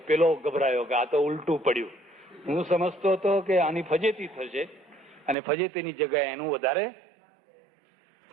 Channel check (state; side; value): drops out; left; at 5.4 s